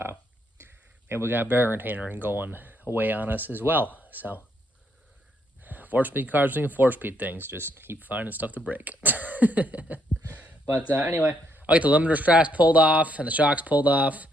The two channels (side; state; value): both; normal; correlation 0.74